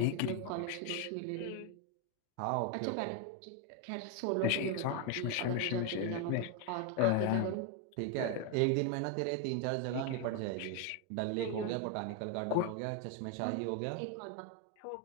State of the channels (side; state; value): both; different; correlation 0.01